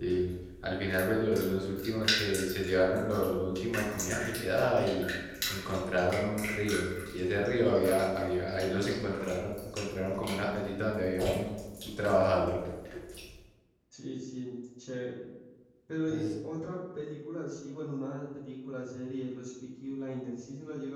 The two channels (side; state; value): both; identical; correlation 1.00